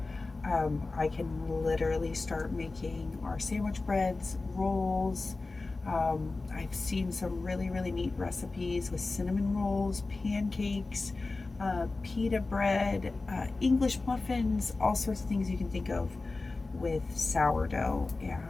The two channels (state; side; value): quieter; right; 3.5 dB